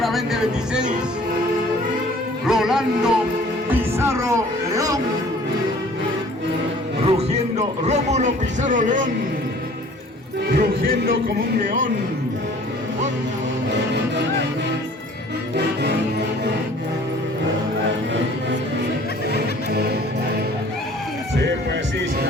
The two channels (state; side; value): normal; both; correlation 0.51